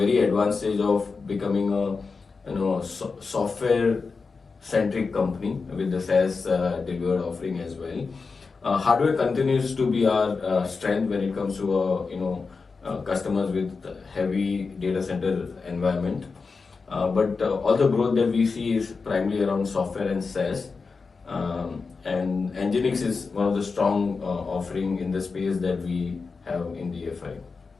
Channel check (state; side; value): quieter; right; 4.6 dB